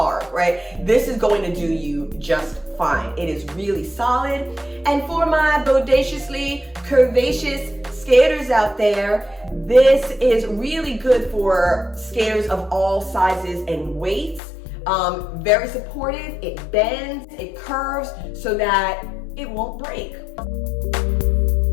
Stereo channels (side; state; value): right; drops out; at 14.4 s